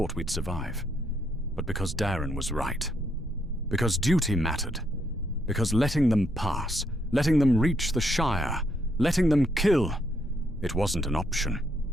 we'd survive. But because Darren was right. Because duty mattered. Because letting them pass, letting them reach the Shire, letting them kill, it wasn't an option,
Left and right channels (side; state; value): both; normal; correlation 0.75